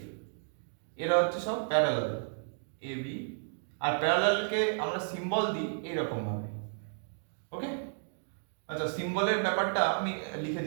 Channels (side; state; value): left; silent; digital silence